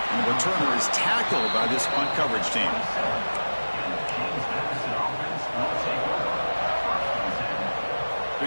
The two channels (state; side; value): inverted; both; correlation -1.00